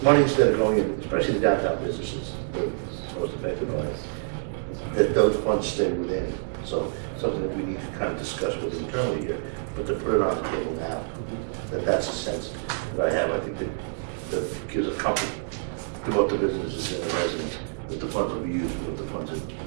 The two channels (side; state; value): left; silent; digital silence